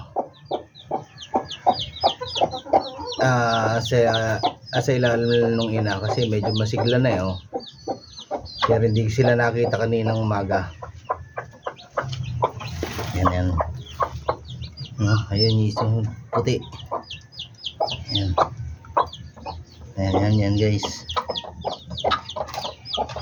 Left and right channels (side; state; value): both; identical; correlation 1.00